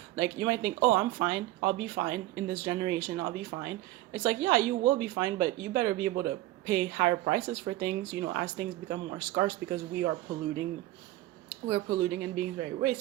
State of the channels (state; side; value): quieter; left; 16.4 dB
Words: like you might think, oh, I'm fine, I'll be fine in this generation, I'll be fine. It's like, yeah, you will be fine, but you better be able to pay higher prices for things, as things become more scarce, because we're polluting and being very